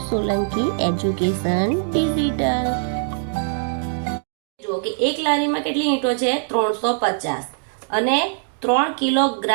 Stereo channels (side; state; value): left; silent; digital silence